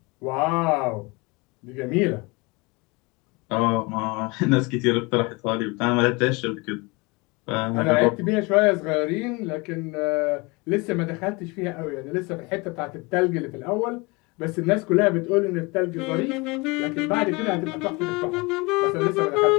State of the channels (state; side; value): quieter; right; 26.4 dB